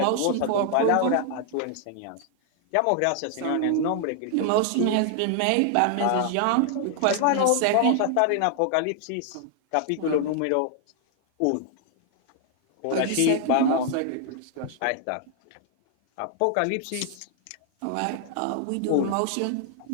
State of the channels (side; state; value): both; different; correlation 0.00